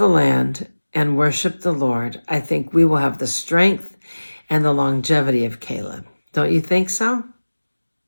land, and worship the Lord, I think we will have the strength and the longevity of Caleb. Don't you think so?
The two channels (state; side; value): inverted; both; correlation -1.00